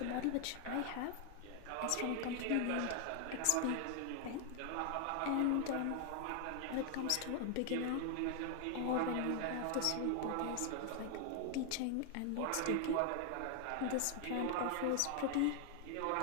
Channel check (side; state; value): both; different; correlation 0.00